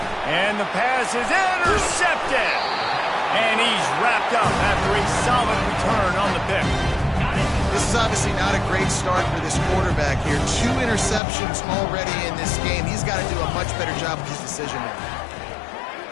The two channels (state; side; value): drops out; right; at 11.2 s